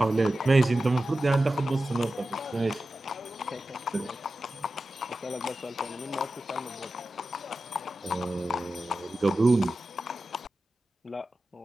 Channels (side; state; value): both; normal; correlation 0.93